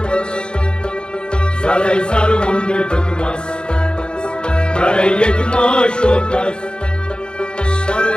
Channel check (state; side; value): late; right; 0.051 ms